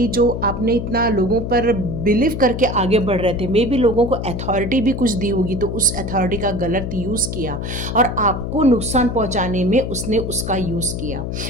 जो आपने इतना लोगों पर बिलीव करके आगे बढ़ रहे थे, मे बी लोगों को अथॉरिटी भी कुछ दी होगी, तो उस अथॉरिटी का गलत यूज़ किया और आपको नुकसान पहुँचाने में उसने उसका यूज़ किया।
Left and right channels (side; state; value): left; noise; hum, 5 dB below the sound